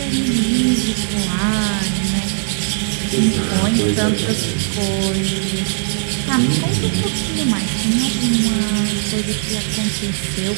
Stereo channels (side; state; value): left; silent; digital silence